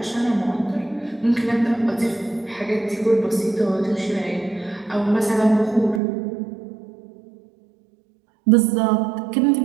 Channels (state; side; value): drops out; left; at 6.0 s